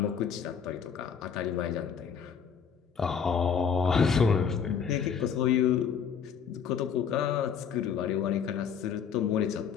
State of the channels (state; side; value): quieter; right; 7.1 dB